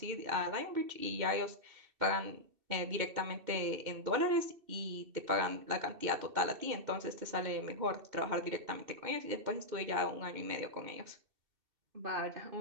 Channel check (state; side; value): late; left; 2.7 ms